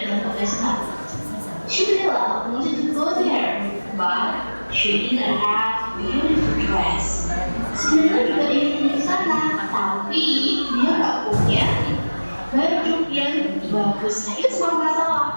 ke pesta. Cinderella wanted to go there, but she didn't have beautiful dress. Cinderella juga ingin ke sana, tapi dia nggak punya baju yang bagus. Nah, itu semua masalah.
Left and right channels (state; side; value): inverted; both; correlation -1.00